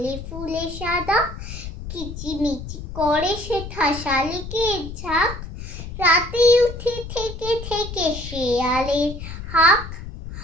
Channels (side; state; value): left; noise; rumble, 10 dB below the sound